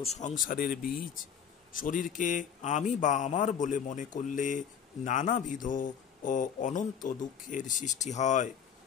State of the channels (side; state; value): right; quieter; 7.8 dB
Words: সংসারের বীজ। শরীরকে আমি বা আমার বলে মনে করলে নানাবিধ ও অনন্ত দুঃখের সৃষ্টি হয়।